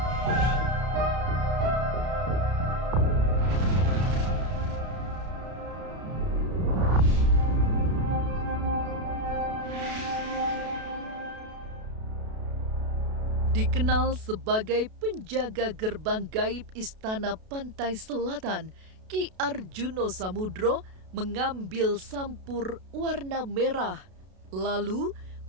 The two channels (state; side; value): late; left; 32 ms